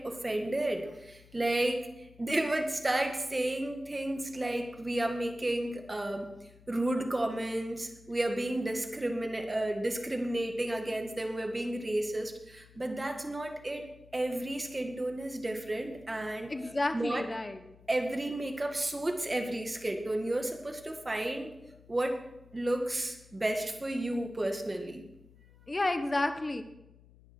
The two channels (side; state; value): left; noise; hum, 24 dB below the sound